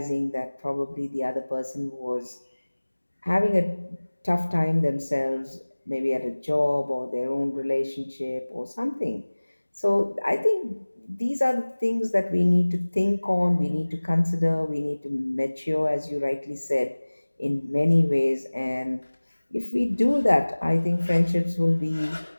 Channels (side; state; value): both; inverted; correlation -1.00